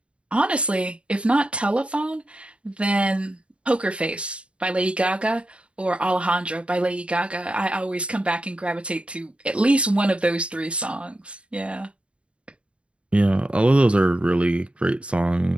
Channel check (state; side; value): late; left; 0.059 ms